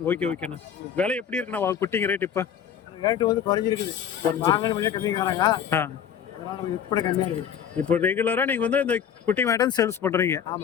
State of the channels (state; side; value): quieter; right; 8.4 dB